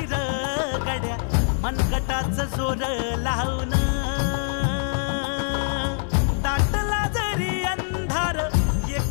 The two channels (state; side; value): silent; right; digital silence